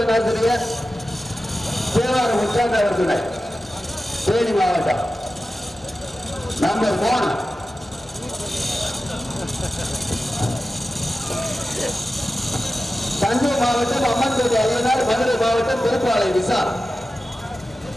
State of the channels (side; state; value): both; normal; correlation 0.94